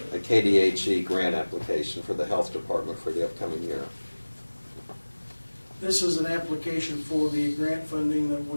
a KDHE grant application for the Health Department for the upcoming year. This is an application for the grant funding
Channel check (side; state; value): both; inverted; correlation -1.00